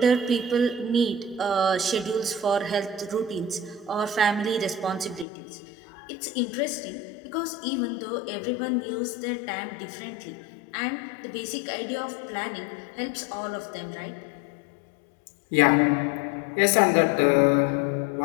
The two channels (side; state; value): right; drops out; at 5.2 s